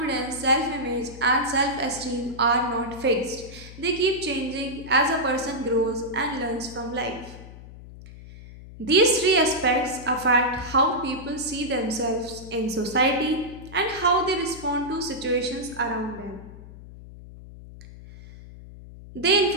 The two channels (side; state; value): left; noise; hum, 16 dB below the sound